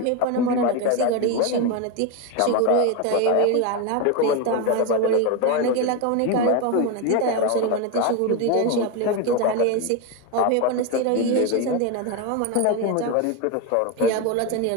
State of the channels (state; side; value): different; both; correlation 0.03